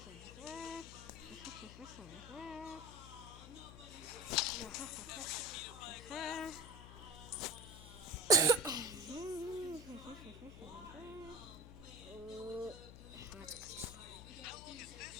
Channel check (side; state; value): left; noise; hum, 13 dB below the sound